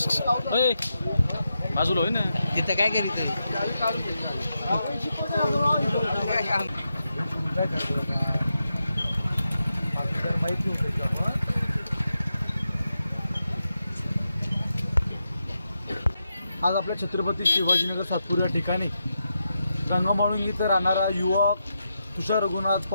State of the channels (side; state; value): both; inverted; correlation -0.86